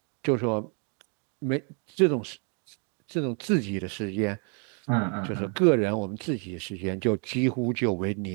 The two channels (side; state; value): left; quieter; 39.5 dB